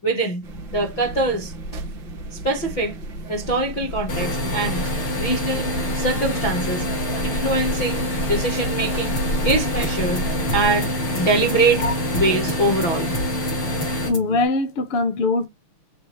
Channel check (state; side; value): late; right; 6.6 ms